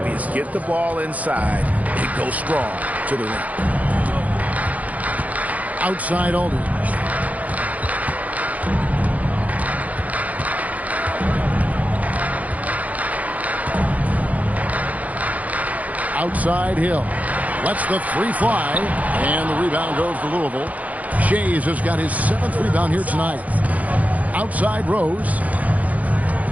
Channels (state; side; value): late; left; 0.073 ms